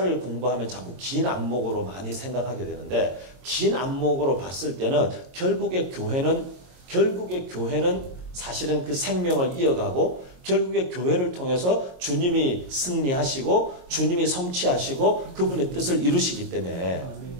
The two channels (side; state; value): left; late; 22 ms